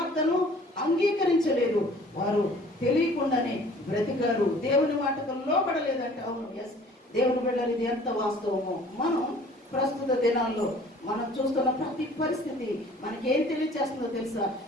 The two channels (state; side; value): normal; both; correlation 0.52